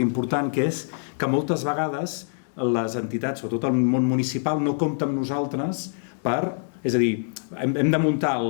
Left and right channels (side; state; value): right; silent; digital silence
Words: que és que moltes vegades les entitats, sobretot el món municipal, no compta amb nosaltres és a dir, hem de muntar